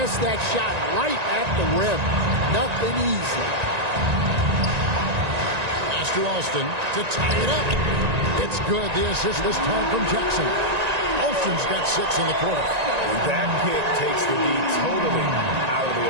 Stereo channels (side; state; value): left; late; 1.9 ms